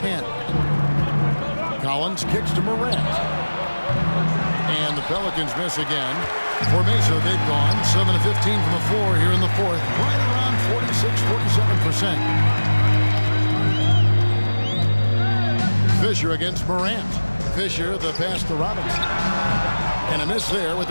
Collins kicks to Morant. And the Pelicans miss again. For Mesa, they've gone 7 of 15 from the floor here in the fourth. Right around 46-47%. Fisher against Morant. Fisher, the pass to Robinson. And a miss there with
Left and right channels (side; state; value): both; inverted; correlation -1.00